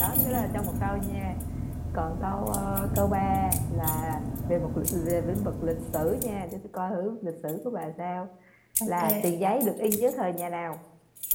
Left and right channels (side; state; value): both; identical; correlation 1.00